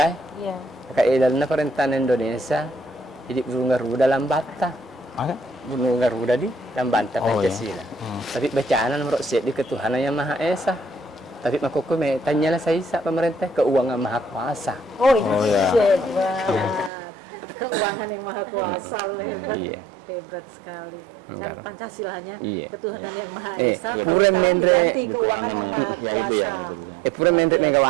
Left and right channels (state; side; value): drops out; left; at 16.9 s